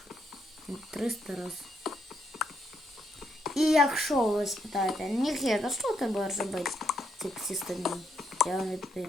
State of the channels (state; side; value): normal; both; correlation 0.77